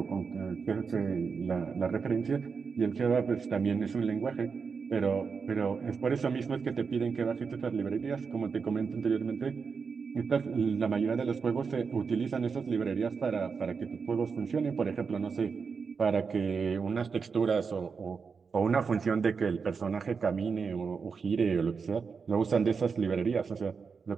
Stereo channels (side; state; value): left; quieter; 5.5 dB